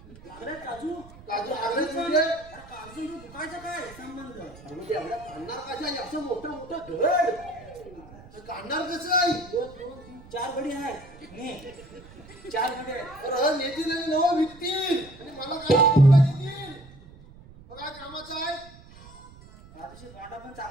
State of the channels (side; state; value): right; noise; rumble, 20 dB below the sound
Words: लागले काजू? काजू लागले म्हणजे या काजू दुखायचं काय संबंध? अरे म्हणजे एवढ्या काढणार कशा? असं मोठं मोठं घड तर काढणार कसं आहे? 2, 2, 3, 4 गडी आहेत. ने 4 गडी आहेत. तर नेतील आणि नवं विकतील आणि मला काय कोणता देतील? मग काय कामाचं आहे? काजूचे तोंडा पण